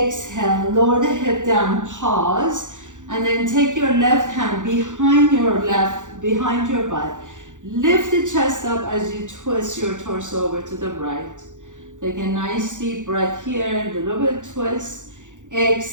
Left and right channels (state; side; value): late; left; 0.86 ms